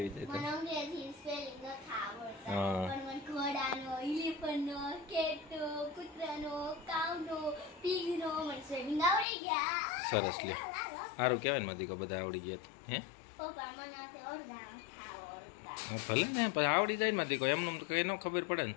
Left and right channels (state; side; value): drops out; right; at 9.2 s